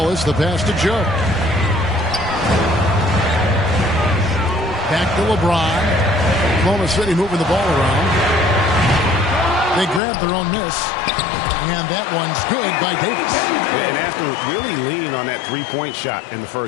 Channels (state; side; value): drops out; right; at 10.0 s